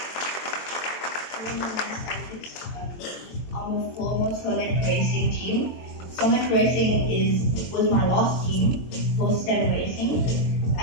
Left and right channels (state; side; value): late; right; 23 ms